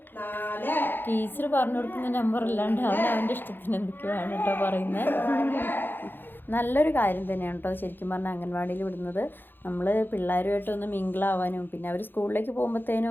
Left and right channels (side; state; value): right; late; 0.097 ms